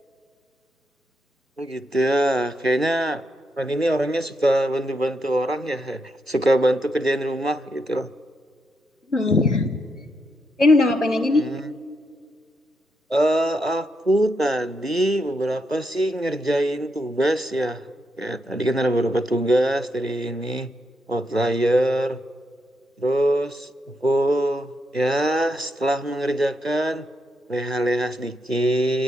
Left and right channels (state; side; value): normal; both; correlation 0.81